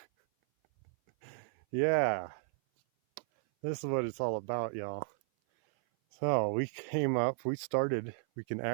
Yeah, this is what it's all about, y'all. So we came up, we started, we can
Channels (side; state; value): left; silent; 55 dB below the other